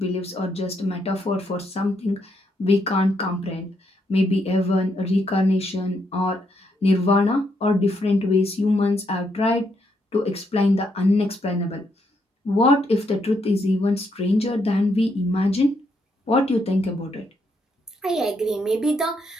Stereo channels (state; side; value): normal; both; correlation 0.77